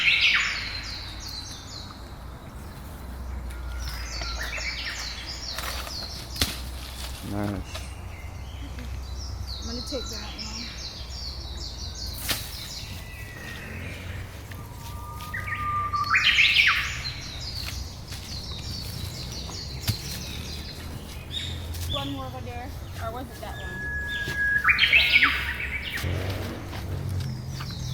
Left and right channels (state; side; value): identical; both; correlation 1.00